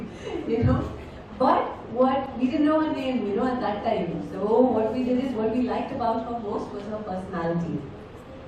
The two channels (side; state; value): both; identical; correlation 1.00